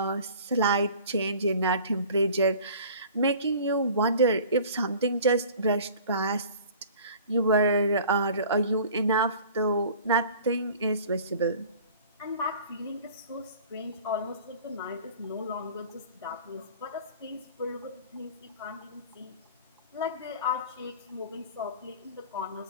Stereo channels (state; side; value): inverted; both; correlation -0.45